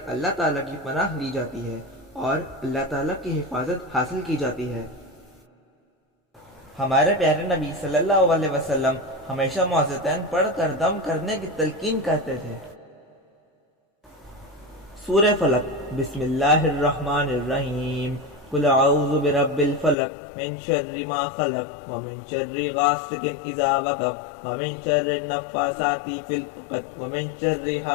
اللہ تعالیٰ کی پناہ لی جاتی ہے اور اللہ تعالیٰ کی حفاظت حاصل کی جاتی ہے۔ ہمارے پیارے نبی صلی اللہ علیہ وسلم ہمیشہ معوذتین پڑھ کر دم کرنے کی تلقین کرتے تھے۔ سورہ فلق۔ بسم اللہ الرحمن الرحیم۔ قل اعوذ برب الفلق من شر ما خلق ومن شر غاسق اذا وقب ومن شر النفاثات في العقد ومن شر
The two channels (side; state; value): right; drops out; at 20.0 s